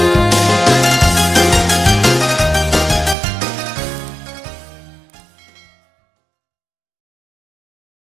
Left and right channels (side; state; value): left; drops out; at 3.2 s